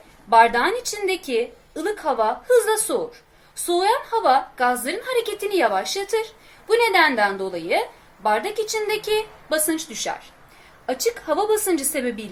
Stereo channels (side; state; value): both; identical; correlation 1.00